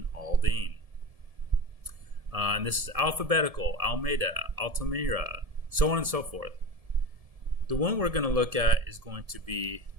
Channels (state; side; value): late; left; 1.7 ms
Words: Aldine. And this is alphabetical: Almeda, Altamira, so on and so forth. The one we're going to look at is going to be